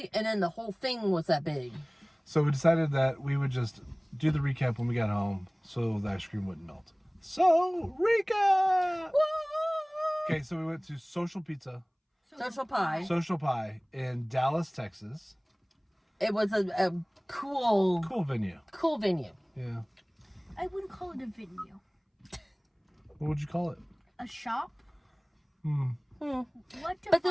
and then the whole thing was that big. So we decided that we would just do the recap when we got home, so the ice cream wouldn't melt. So recap. Woo! Okay, so we went to Social Pizza. Social Pie in Dallas, Texas. It was a cool venue. Cool venue. Yeah. I wouldn't call it a venue. What would you call it? A shop? What But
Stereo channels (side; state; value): both; identical; correlation 1.00